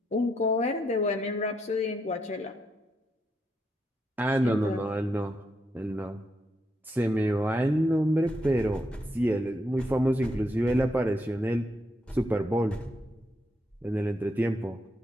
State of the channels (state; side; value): normal; both; correlation 0.80